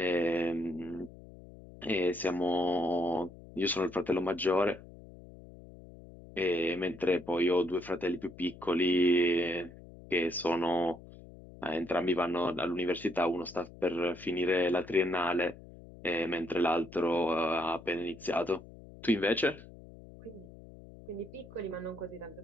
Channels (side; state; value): left; noise; hum, 18 dB below the sound